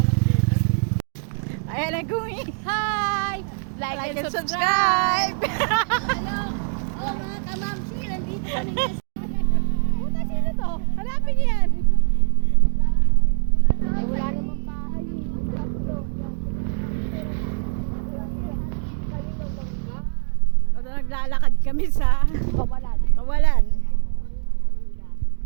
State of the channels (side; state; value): left; silent; 61 dB below the other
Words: Ayan na, Gumi. Hi! Like and subscribe. Hello. Oh, mga kamamsi, nandito kami na. Puta, sino to? Hanapin niyo yan. Ay, wala namang bahay. O, naglalakad kami sa Kawalan. Kawalan.